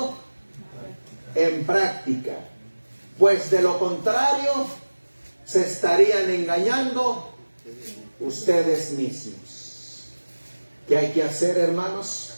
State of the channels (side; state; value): both; inverted; correlation -1.00